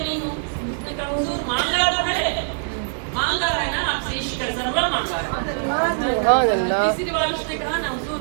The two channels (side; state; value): left; silent; digital silence